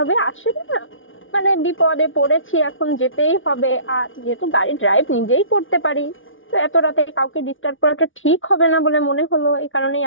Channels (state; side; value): late; right; 0.57 ms